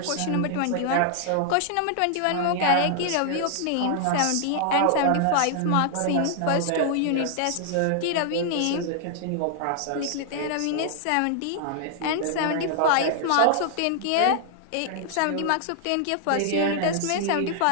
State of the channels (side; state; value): both; different; correlation 0.00